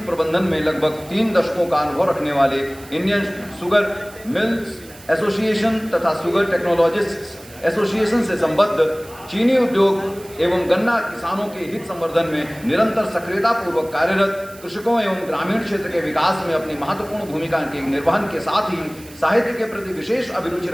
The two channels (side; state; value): right; noise; hiss, 21 dB below the sound